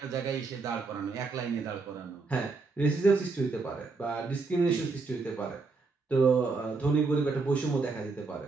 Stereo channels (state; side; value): quieter; left; 4.1 dB